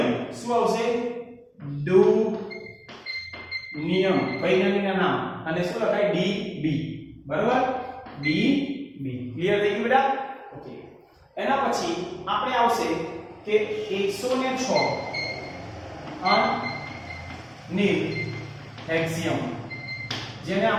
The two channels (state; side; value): identical; both; correlation 1.00